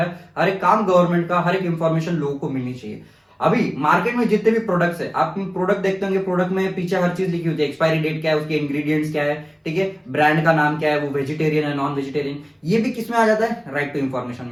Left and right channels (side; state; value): both; identical; correlation 1.00